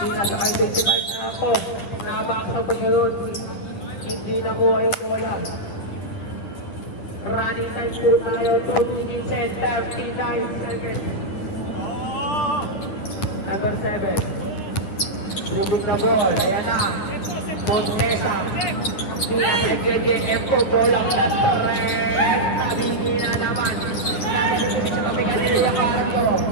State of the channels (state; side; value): late; right; 10 ms